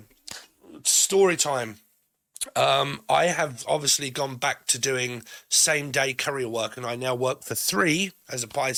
story time. I have obviously gone back to doing same day courier work, and I now work for 3 as a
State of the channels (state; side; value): identical; both; correlation 1.00